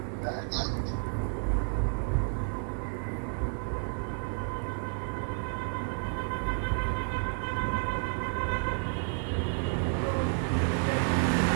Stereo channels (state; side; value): silent; left; 57 dB below the other